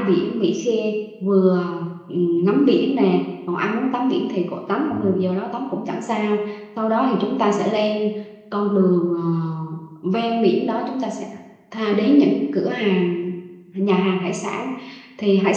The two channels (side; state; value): both; identical; correlation 1.00